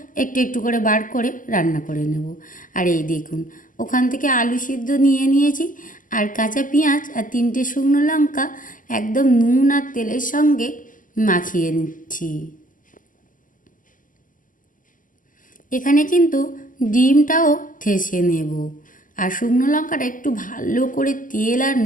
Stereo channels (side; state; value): right; late; 0.38 ms